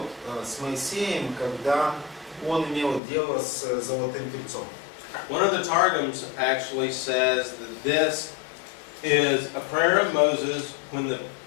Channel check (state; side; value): drops out; right; at 3.0 s